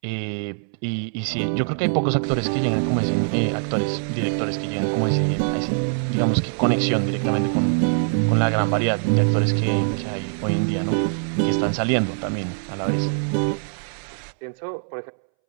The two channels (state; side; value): silent; left; 64 dB below the other